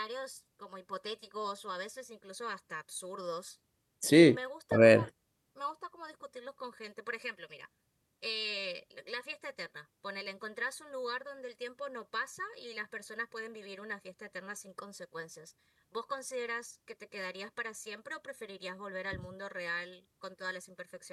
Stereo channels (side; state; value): both; identical; correlation 1.00